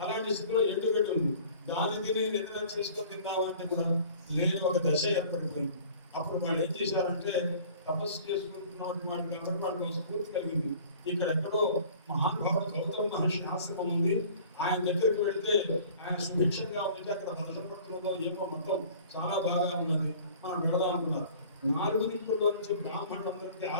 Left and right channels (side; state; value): both; inverted; correlation -0.48